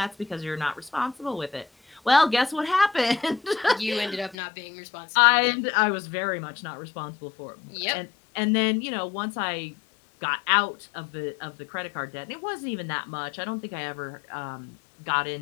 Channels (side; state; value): right; drops out; at 4.4 s